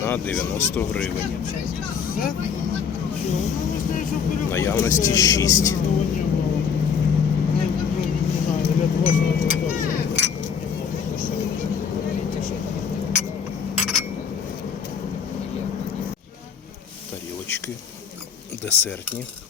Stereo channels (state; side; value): quieter; right; 6.6 dB